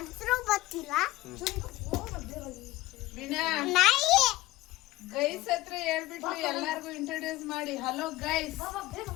ಗೊತ್ತಿಲ್ಲ. ವಿನಾ ನಾಯಿ ಗೈಸ್ ಹತ್ರ ಹೇಳ್ಬಿಟ್ಟು ಎಲ್ಲಾರ್ಗು ಇಂಟ್ರೊಡ್ಯೂಸ್ ಮಾಡಿ. ಹಲೋ ಗೈಸ್,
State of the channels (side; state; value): right; quieter; 17.8 dB